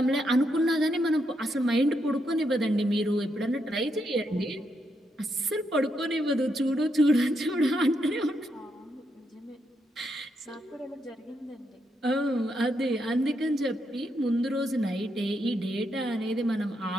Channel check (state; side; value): normal; both; correlation 0.80